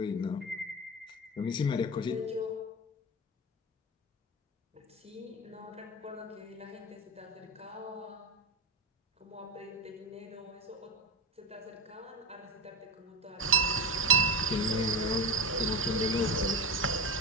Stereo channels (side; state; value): both; normal; correlation 0.20